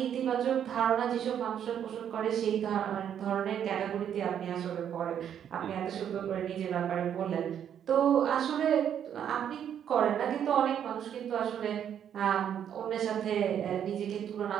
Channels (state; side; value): quieter; left; 9.2 dB